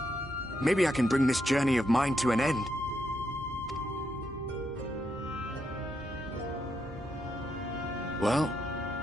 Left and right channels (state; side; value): normal; both; correlation 0.80